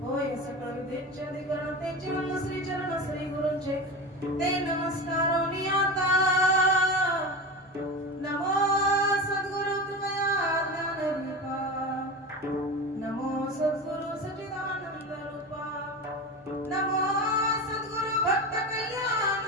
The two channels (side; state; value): both; normal; correlation 0.26